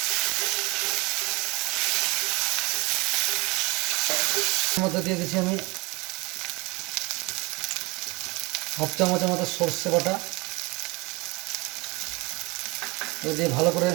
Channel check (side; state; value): left; quieter; 25.7 dB